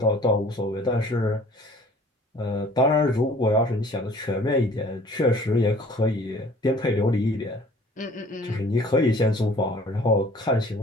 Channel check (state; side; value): normal; both; correlation 0.51